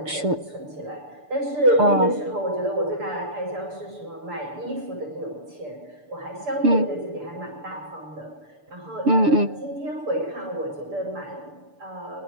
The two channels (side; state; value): left; late; 6.8 ms